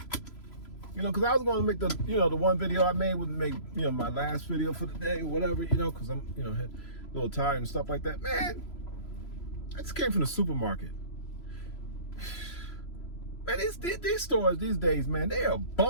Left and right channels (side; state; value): right; late; 3.0 ms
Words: Because I was going to make the one video I made would make, my last video for the day or whatever, because I'm, a little tired and stuff like that. Man, I just came from the supermarket. Man, these stores these days, man, they are